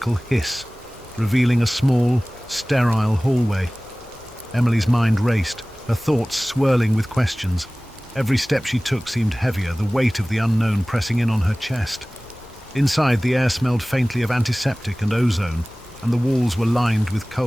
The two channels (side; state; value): both; normal; correlation 0.98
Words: hiss, revealing a small, sterile hallway. Emily's mind raced, her thoughts swirling with questions. Every step she took seemed heavier, the weight of the unknown pressing in on her chest. Inside, the air smelled faintly of antiseptic and ozone, and the walls were lined with